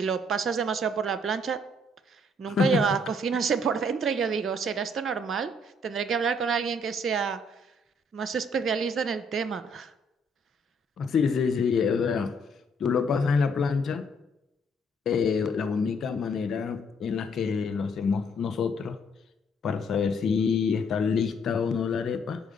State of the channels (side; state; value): both; normal; correlation 0.66